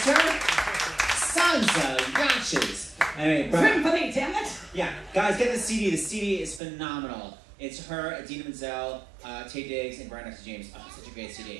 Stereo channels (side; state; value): left; drops out; at 6.6 s